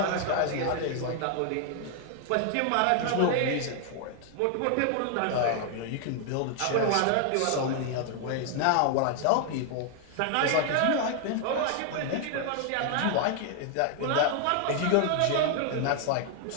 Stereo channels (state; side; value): different; both; correlation 0.00